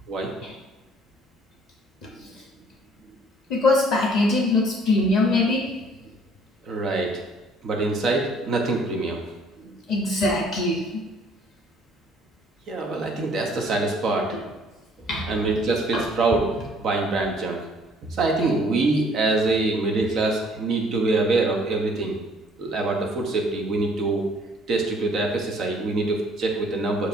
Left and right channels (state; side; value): normal; both; correlation 0.59